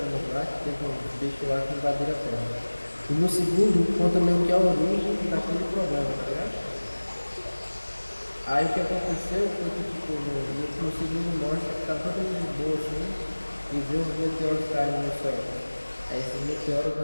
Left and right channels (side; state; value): both; inverted; correlation -1.00